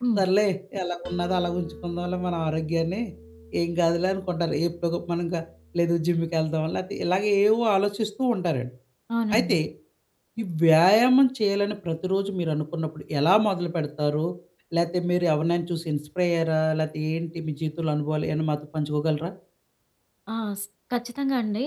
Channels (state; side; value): identical; both; correlation 1.00